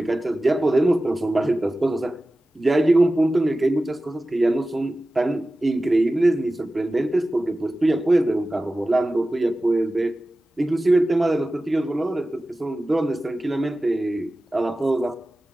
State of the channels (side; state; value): both; normal; correlation 0.96